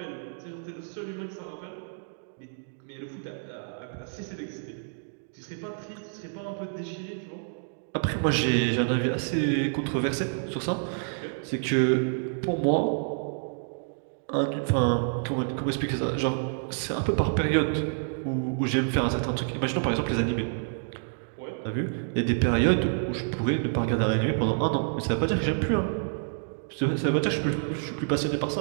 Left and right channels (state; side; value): silent; left; digital silence